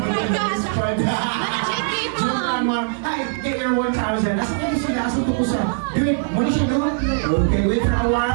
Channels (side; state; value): left; silent; 58 dB below the other